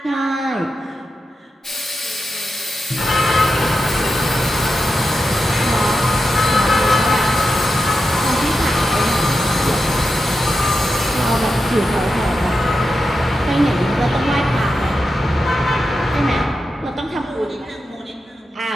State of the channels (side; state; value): both; normal; correlation 0.89